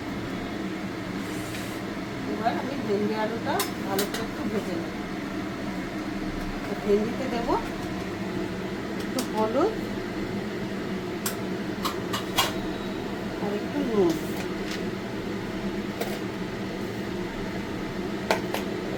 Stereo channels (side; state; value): both; identical; correlation 1.00